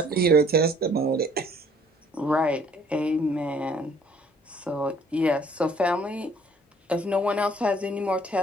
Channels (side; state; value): both; normal; correlation 0.58